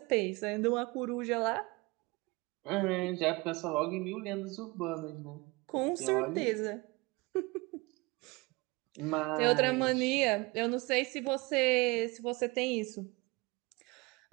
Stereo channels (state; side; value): quieter; left; 24.9 dB